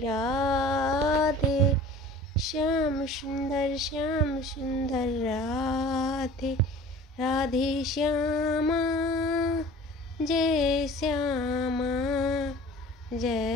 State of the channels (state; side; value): normal; both; correlation 0.44